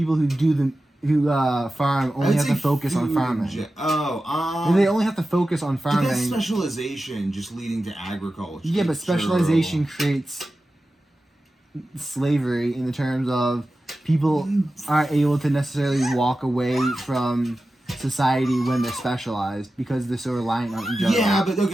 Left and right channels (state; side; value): normal; both; correlation 0.94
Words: who farm only have to focus on farming. They only have to focus on farming. But that's specialization just leading to agriculture. Yeah, but specialization creates slavery in the terms of people aren't able to necessarily walk away from society when they're specialized because they're so reliant on each other. Yeah, but